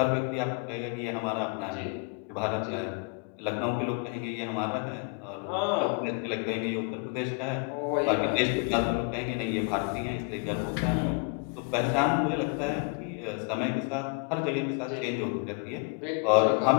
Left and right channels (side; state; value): right; quieter; 33.4 dB